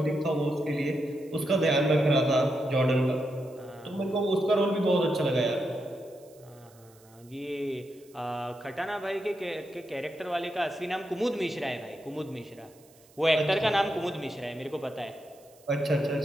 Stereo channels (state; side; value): noise; right; hiss, 28 dB below the sound